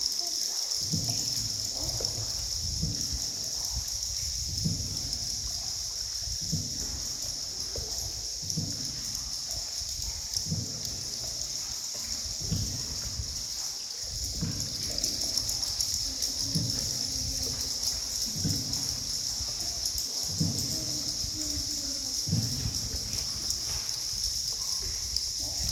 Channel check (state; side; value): identical; both; correlation 1.00